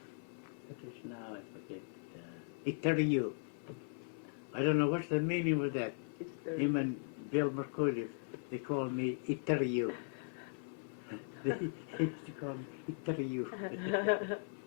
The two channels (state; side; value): silent; right; 52 dB below the other